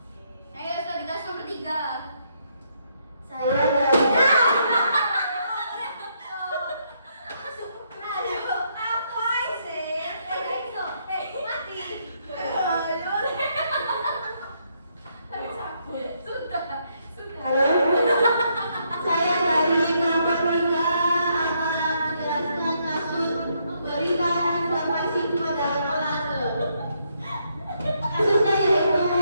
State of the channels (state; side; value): inverted; both; correlation -0.75